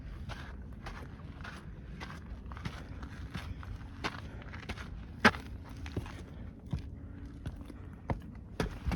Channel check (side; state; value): both; identical; correlation 1.00